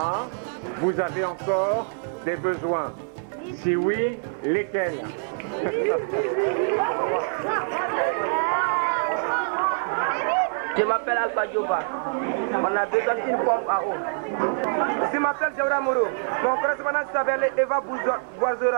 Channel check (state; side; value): silent; left; 60 dB below the other